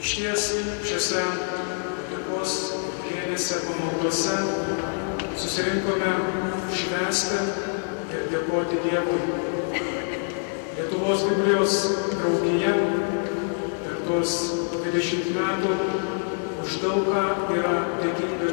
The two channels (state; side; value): silent; right; 59 dB below the other